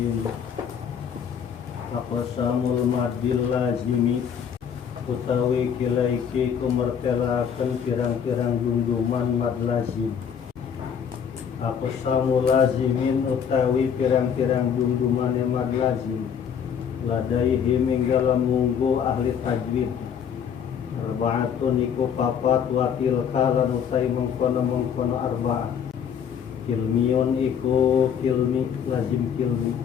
Aqsamul madil lazimi utawi kilaiki kumertelakan pirang-pirang junjuman mad lazim. Aqsamul lazimin utawi pirang-pirang junjuman mad lazim. Ladaihi minggalam munggu ahli tajwid. Arba'atun iku papat wa tilka lan utai mengkono arba'ah. Kilmiyun iku kilmi lazim kilmi.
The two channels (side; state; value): right; quieter; 7.7 dB